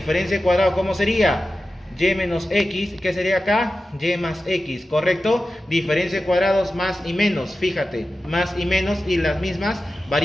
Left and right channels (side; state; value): both; normal; correlation 0.93